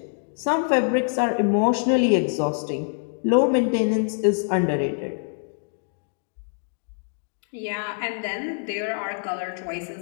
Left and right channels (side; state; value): right; silent; digital silence